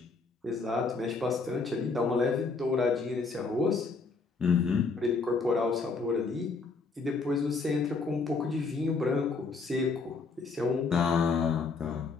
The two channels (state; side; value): quieter; right; 4.3 dB